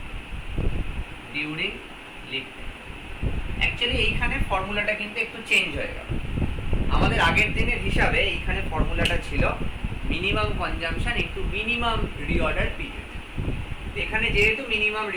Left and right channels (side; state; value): both; identical; correlation 1.00